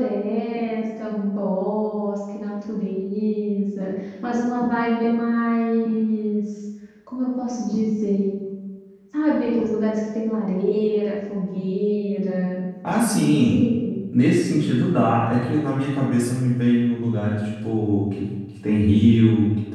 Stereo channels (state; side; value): identical; both; correlation 1.00